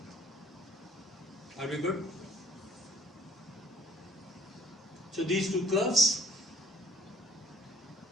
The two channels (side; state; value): both; normal; correlation 0.56